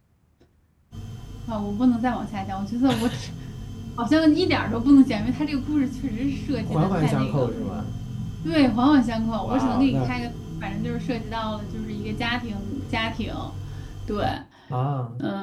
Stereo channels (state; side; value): identical; both; correlation 1.00